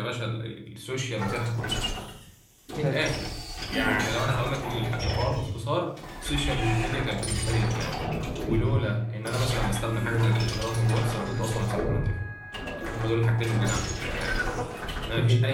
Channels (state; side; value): identical; both; correlation 1.00